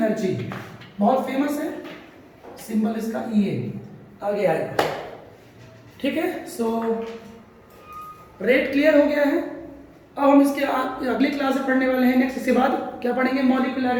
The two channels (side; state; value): both; identical; correlation 1.00